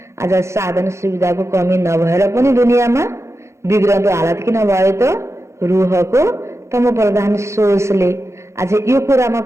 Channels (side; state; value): left; late; 0.14 ms